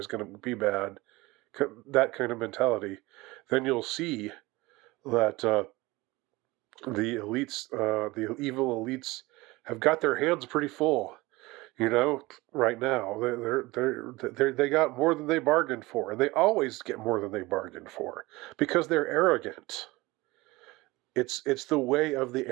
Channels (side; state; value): left; quieter; 21.3 dB